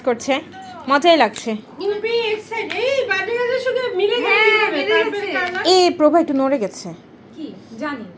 করছে, মজাই লাগছে। খুবই এক্সাইটেড। এই বার্থডে গার্লের সঙ্গে মিলে গেছে হ্যাঁ, কিভাবে? মিলে পার্পল গেছে। কালার। এ প্রভা একটু নড়ে গেছে। কি জানি।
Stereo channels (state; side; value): identical; both; correlation 1.00